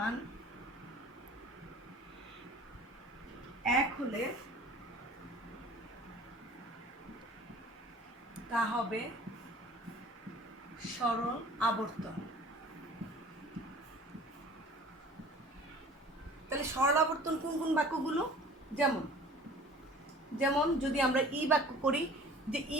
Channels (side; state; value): both; normal; correlation 0.46